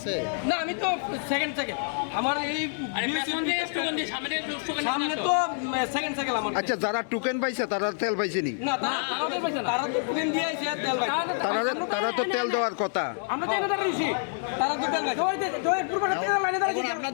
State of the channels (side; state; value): right; silent; 60 dB below the other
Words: না আমি তো সেকেন্ড সাইকেল আমার এই সামনে তো সেকেন্ড সাইকেল আমার আচ্ছা যারা টোকেন পাইছে তারা তেল পাইছেনি না তারা তো টোকেন দিয়ে আইছে তেল পাইছে তারা তো তেল দেওয়ার কথা আমরা তো এনে দাঁড়িয়েছি তারা তো তেল পাইছে জয়ের পুরোটা তেল লাইনে দাঁড়িয়েছি